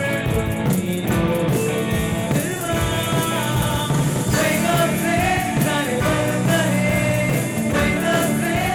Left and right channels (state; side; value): identical; both; correlation 1.00